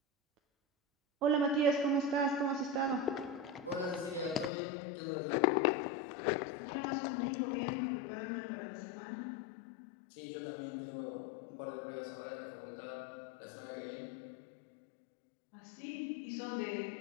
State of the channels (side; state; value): right; drops out; at 4.5 s